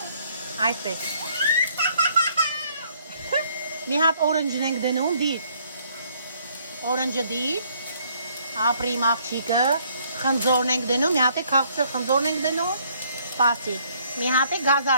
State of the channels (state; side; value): inverted; both; correlation -0.65